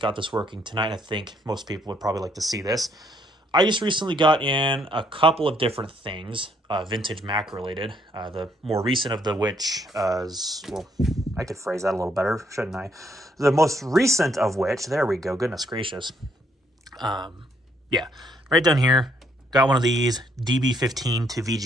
got this working tonight, and I think most people would probably like to see this. I just recently got in a couple of different things, vintage Mac related. The more recent of the which is, well, I could phrase that a little better, shouldn't I? The most recent of which, there we go, goodness gracious. Yeah, right down here, got one of these DB15 to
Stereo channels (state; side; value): normal; both; correlation 0.70